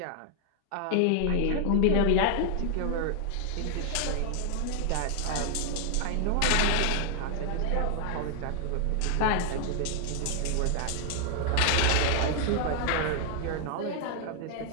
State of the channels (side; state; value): both; different; correlation 0.00